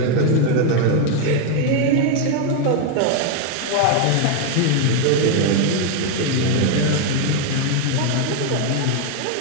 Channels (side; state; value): both; different; correlation 0.01